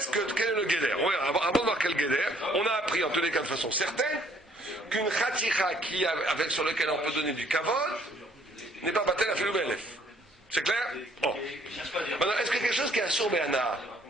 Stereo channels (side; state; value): both; normal; correlation 0.62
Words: est le guéder. Avant de voir quel guéder, on a appris en tous les cas de façon certaine qu'une khatira sur lequel on peut donner du kavod n'est pas batel à filou be'elef. C'est clair? Oh. Maintenant, est-ce qu'il y a quelque chose qui est un sourd béana?